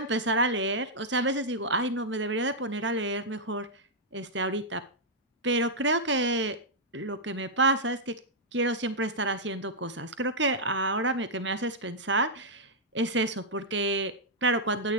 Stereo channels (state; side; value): normal; both; correlation -0.07